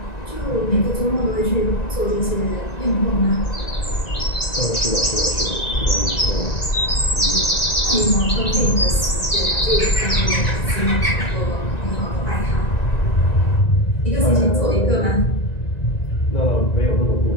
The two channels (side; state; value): right; late; 1.9 ms